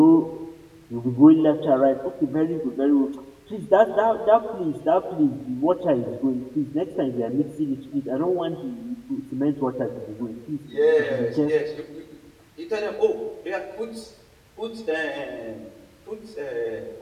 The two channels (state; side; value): identical; both; correlation 1.00